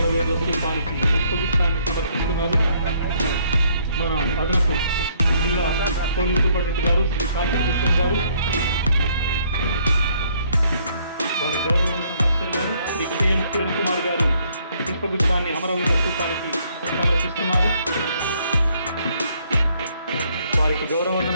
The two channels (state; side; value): inverted; both; correlation -0.67